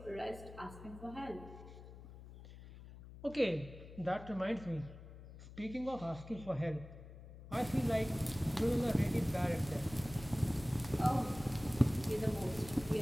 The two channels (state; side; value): noise; left; hum, 15 dB below the sound